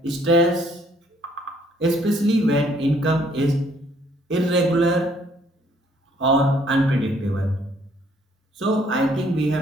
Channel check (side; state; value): both; normal; correlation 0.64